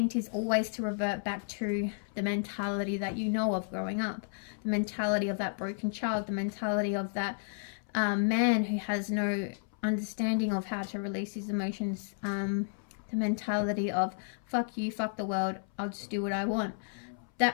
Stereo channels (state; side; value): silent; right; 56 dB below the other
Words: is always to revert back to the mentality that you know of growing up, the mentality of that broken child, the mentality of that man who has no understanding of how to release his emotions, the mentality of fuck you, fuck the world, I'll just do what I want.